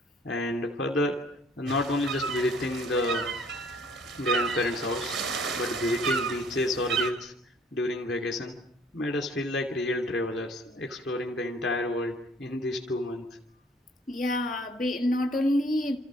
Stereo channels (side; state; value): both; normal; correlation 0.57